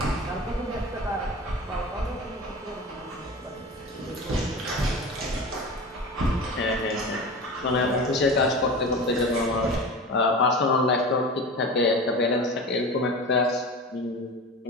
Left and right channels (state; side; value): normal; both; correlation 0.31